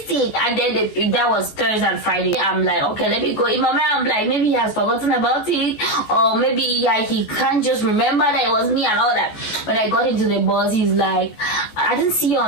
it, and then that was Thursday and Friday. I'm like, okay, let me go. In my mind, I'm like, maybe he has forgotten about it, or maybe he can't just remember that it was me and all that. When I got into the bus, he's like, I didn't see you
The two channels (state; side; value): late; right; 14 ms